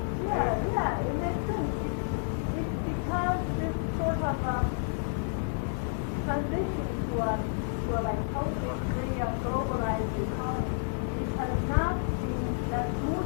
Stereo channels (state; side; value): silent; right; digital silence